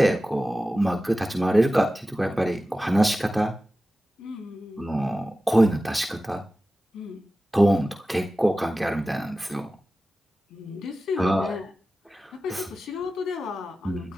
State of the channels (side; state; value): both; normal; correlation 0.95